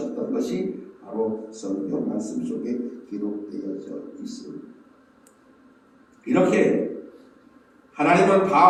것이 바로 성경 말씀 속에 기록되어져 있습니다. 이렇게 하나님은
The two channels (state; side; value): identical; both; correlation 1.00